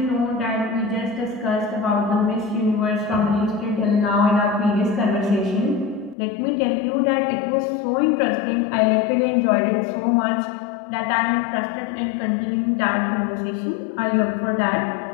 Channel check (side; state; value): right; drops out; at 6.2 s